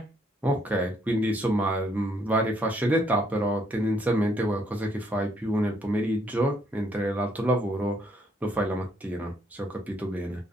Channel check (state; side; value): normal; both; correlation 0.70